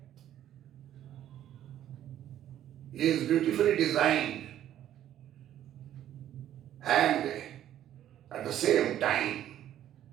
is beautifully designed, and at the same time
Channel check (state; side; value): quieter; left; 11.6 dB